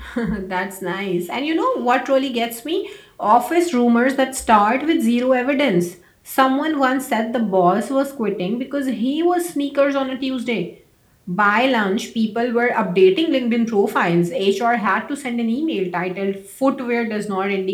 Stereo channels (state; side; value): identical; both; correlation 1.00